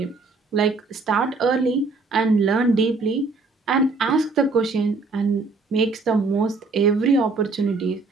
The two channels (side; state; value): left; quieter; 3.9 dB